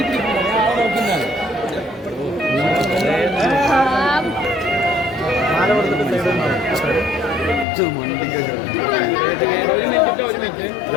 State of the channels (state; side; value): drops out; right; at 7.7 s